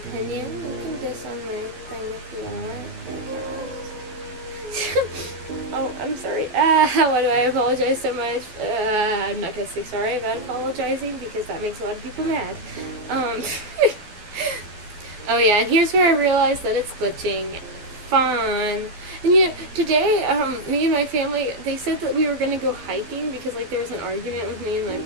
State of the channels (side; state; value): left; late; 12 ms